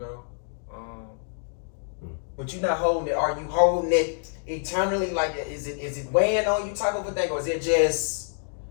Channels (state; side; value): silent; right; digital silence